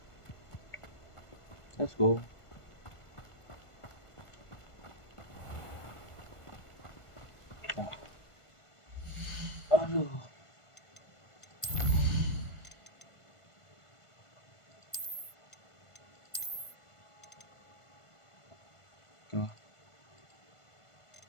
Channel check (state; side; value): late; right; 1.5 ms